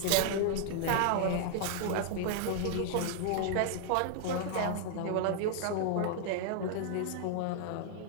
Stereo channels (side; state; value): both; different; correlation 0.00